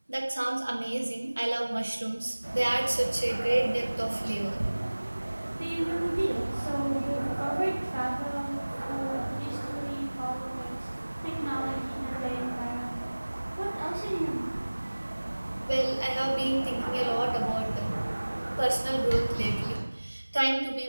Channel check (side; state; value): both; inverted; correlation -1.00